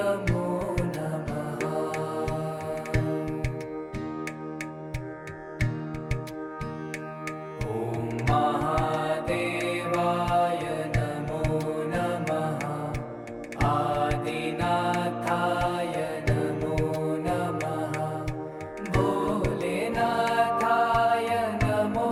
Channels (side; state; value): both; identical; correlation 1.00